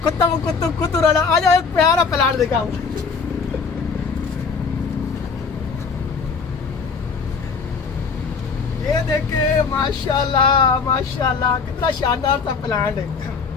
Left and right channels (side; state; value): right; quieter; 5.2 dB